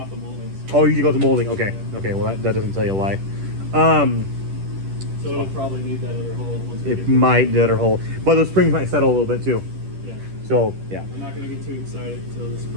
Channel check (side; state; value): left; late; 10 ms